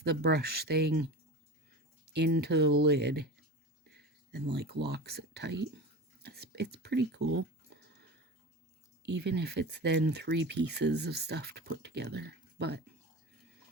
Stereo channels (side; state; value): both; normal; correlation 0.30